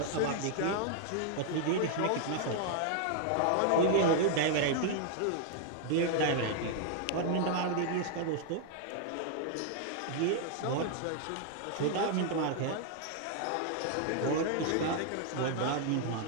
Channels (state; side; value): different; both; correlation 0.00